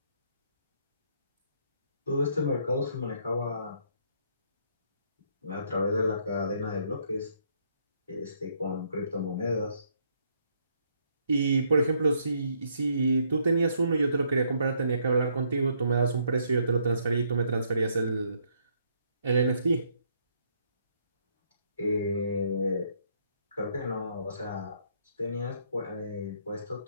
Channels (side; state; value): both; inverted; correlation -0.70